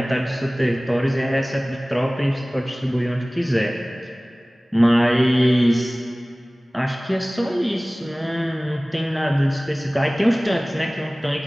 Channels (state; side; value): normal; both; correlation 0.98